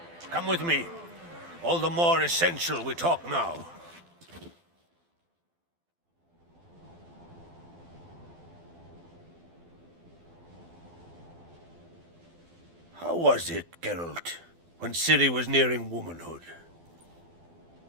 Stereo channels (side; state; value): left; late; 12 ms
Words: Come with me. All the more essential we talk now. How was it, Geralt, when Ciri was nearing womanhood?